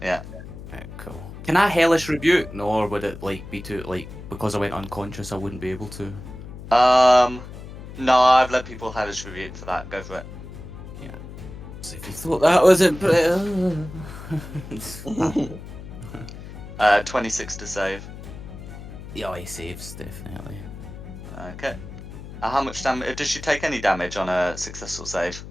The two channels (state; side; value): noise; left; hum, 13 dB below the sound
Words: Yeah. Right, cool. Can I hellish rebuke? No, or would it like be too like because I went unconscious I wouldn't be able to? No, I've let people hellish rebuke for that. Go for it. Yeah. So if you thought that wasn't 26 to save. yeah, he saves definitely. Okay. How much damage? Does she take any damage on a successful save?